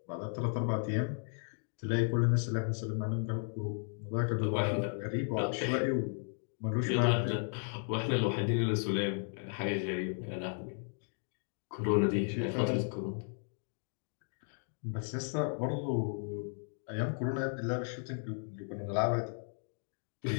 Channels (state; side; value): silent; right; 54 dB below the other